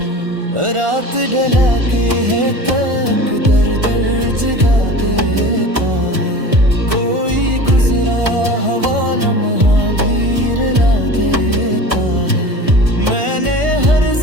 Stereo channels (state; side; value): late; left; 1.4 ms